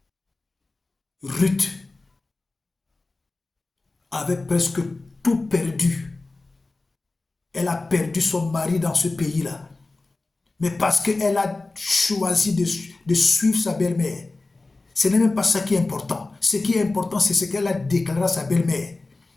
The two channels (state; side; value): quieter; right; 3.3 dB